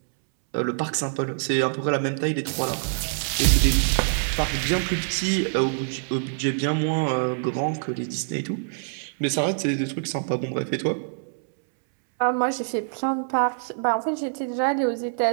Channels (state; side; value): silent; left; 62 dB below the other